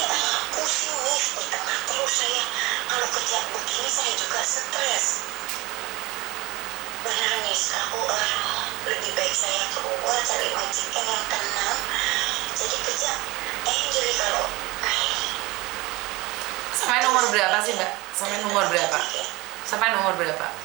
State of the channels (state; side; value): quieter; left; 22.0 dB